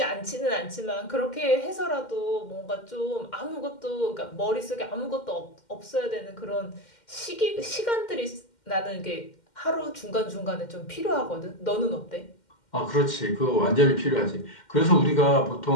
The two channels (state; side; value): late; right; 2.1 ms